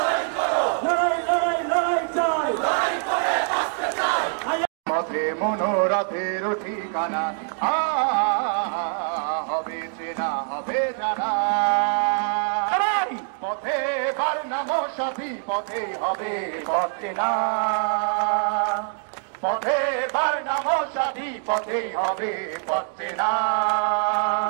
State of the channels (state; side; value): silent; left; 62 dB below the other